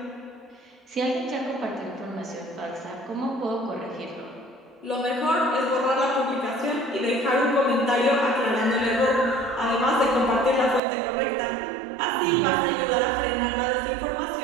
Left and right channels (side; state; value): left; drops out; at 10.8 s